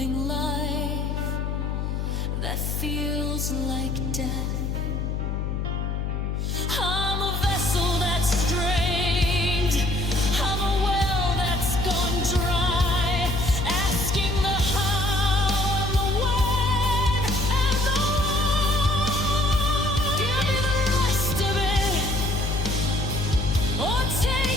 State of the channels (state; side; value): noise; left; hum, 1 dB below the sound